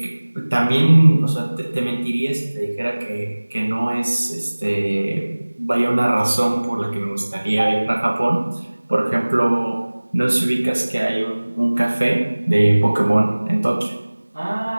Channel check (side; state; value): both; inverted; correlation -1.00